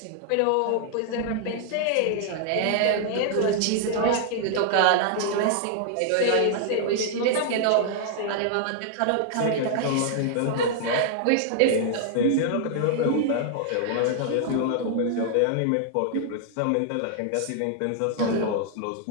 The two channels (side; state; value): both; different; correlation -0.01